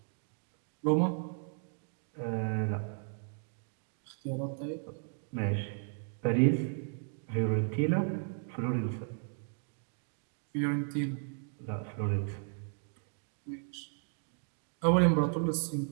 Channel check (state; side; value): silent; left; 55 dB below the other